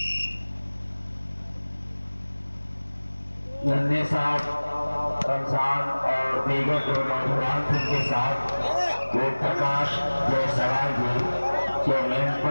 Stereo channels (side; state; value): both; inverted; correlation -1.00